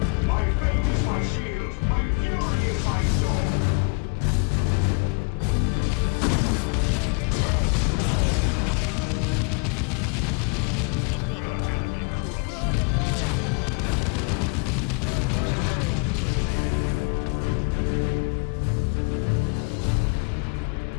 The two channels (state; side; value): quieter; right; 36.0 dB